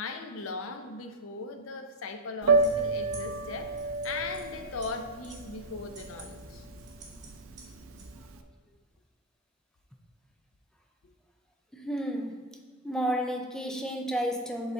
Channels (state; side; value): normal; both; correlation 0.00